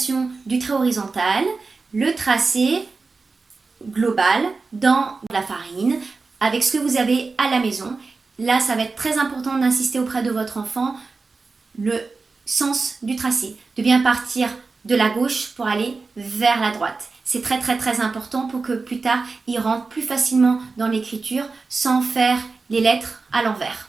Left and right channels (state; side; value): quieter; left; 4.1 dB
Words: du trait horizontal, le tracé global dans la farine, avec ce que vous avez à la maison. Là, ça va être très important d'insister auprès de votre enfant le sens du tracé, de bien partir de la gauche pour aller vers la droite. C'est très important pour que plus tard, il rentre plus facilement dans l'écriture sans faire les lettres à l'envers.